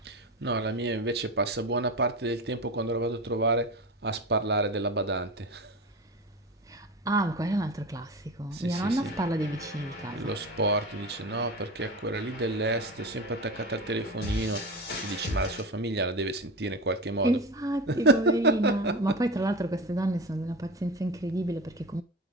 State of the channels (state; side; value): normal; both; correlation 0.26